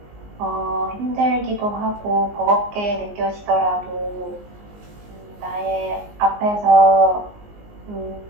힘들기도 하고 버겁게 느껴지더라도 나의 앞에서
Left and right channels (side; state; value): left; late; 19 ms